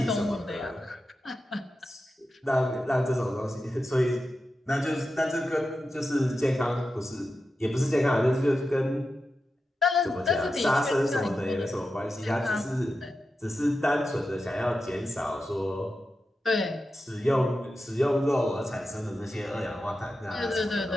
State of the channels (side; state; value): both; normal; correlation 0.91